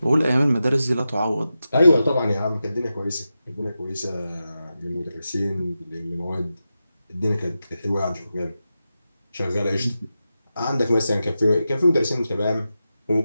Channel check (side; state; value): both; inverted; correlation -0.91